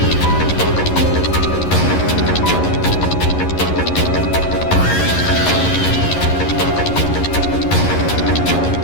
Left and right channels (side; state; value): right; late; 11 ms